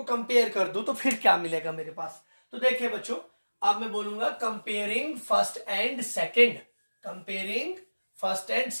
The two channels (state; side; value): inverted; both; correlation -1.00